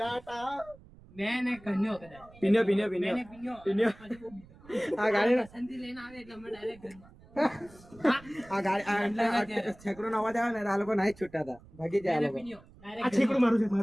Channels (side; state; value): right; noise; rumble, 23 dB below the sound